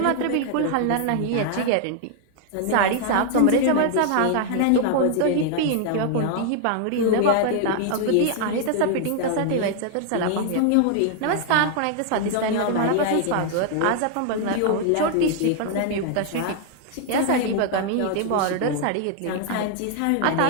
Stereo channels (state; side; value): different; both; correlation 0.00